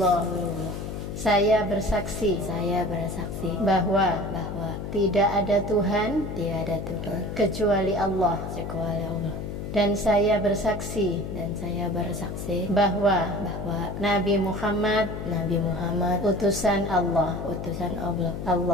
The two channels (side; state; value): left; noise; hum, 6 dB below the sound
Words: Saya bersaksi Saya bersaksi bahwa bahwa tidak ada Tuhan tidak ada Tuhan kecuali Allah, kecuali Allah, dan saya bersaksi dan saya bersaksi bahwa bahwa Nabi Muhammad Nabi Muhammad utusan Allah. utusan Allah.